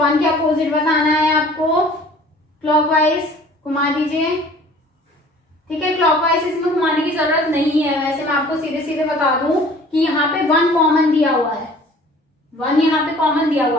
के अपोजिट बताना है आपको, क्लॉकवाइज घुमा दीजिए। ठीक है, क्लॉकवाइज इसमें घुमाने की जरूरत नहीं है, वैसे मैं आपको सीधे सीधे बता दूं कि यहाँ पे 1 कॉमन दिया हुआ है, 1 यहाँ पे कॉमन दिया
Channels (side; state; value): both; normal; correlation 0.49